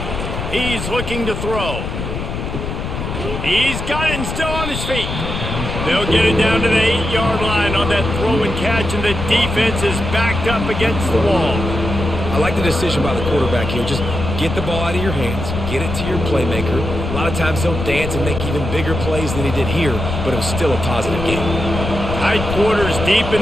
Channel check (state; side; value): noise; left; rumble, 5 dB below the sound